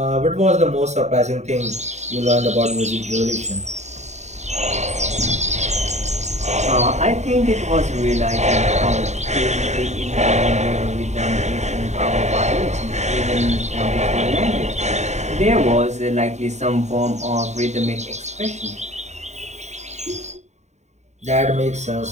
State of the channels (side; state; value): left; late; 0.33 ms